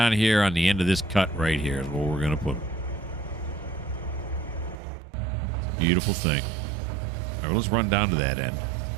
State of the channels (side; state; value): left; drops out; at 4.8 s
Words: here on the end of this cut right here is where we're going to put them. It's a beautiful thing. All right, let's run down to that end.